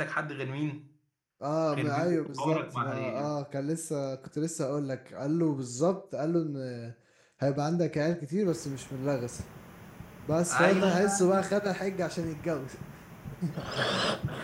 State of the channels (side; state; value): both; identical; correlation 1.00